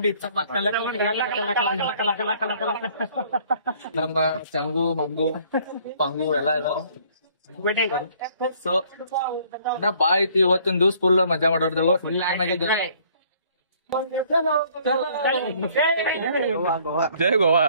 ನಮ್ಮ ಚಂಗು ಮಂಗು ಪಂಗು ಎಲ್ಲಾ ಇದಾರ. ಸೊ ಬಾ ಐತಿ ಇವತ್ತಿನ ದಿವ್ಸ ಫುಲ್ ಮಜಾ ಮಾಡೋರ್ದೇವು. ಜೈ ಗೋವಾ.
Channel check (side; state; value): both; inverted; correlation -0.59